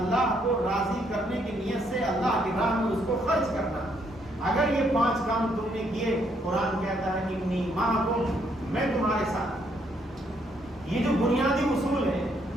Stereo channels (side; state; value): both; normal; correlation 0.72